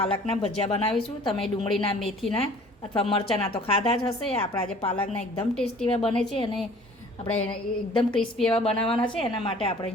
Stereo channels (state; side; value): normal; both; correlation 0.50